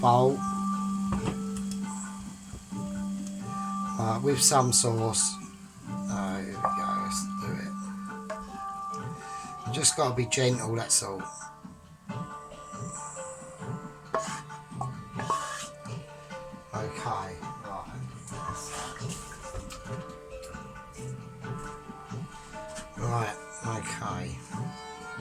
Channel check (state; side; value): identical; both; correlation 1.00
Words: with some sauce. There we go, let's do it. You just got to be gentle, that's all. Okay, right, okay.